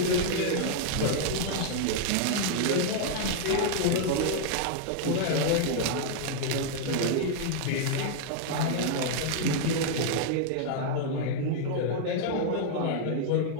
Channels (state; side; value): different; both; correlation -0.01